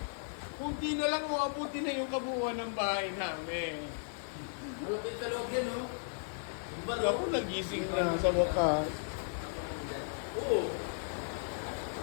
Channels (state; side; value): silent; right; 54 dB below the other